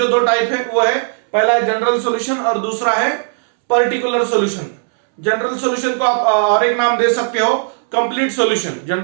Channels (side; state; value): left; silent; 69 dB below the other